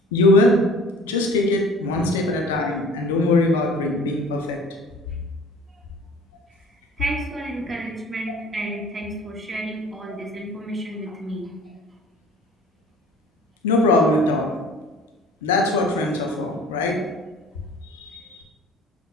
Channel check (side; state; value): both; normal; correlation 0.47